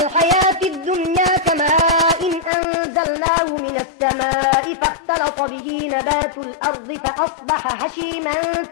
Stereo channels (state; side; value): drops out; right; at 2.5 s